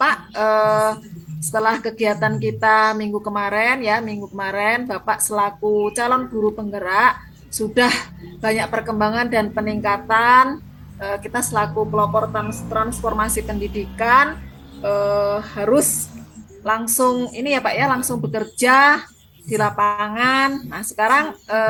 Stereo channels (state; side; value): identical; both; correlation 1.00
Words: setelah kegiatan kita minggu kemarin Bapak selaku calon guru penggerak sudah banyak perkembangan dan peningkatan. Kita selaku pelopor transformasi pendidikan harus langsung ini ya Pak ya, langsung bekerja di lapangan. Nah sekarang